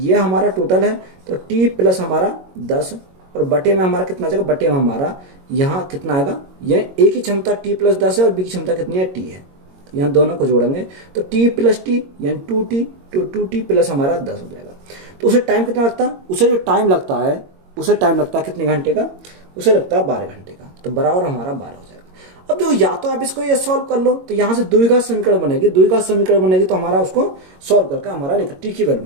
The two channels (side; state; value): left; late; 22 ms